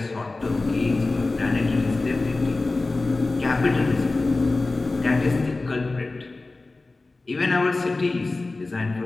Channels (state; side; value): quieter; right; 3.3 dB